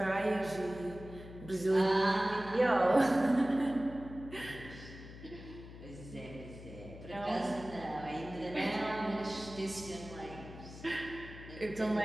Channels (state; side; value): noise; left; hum, 14 dB below the sound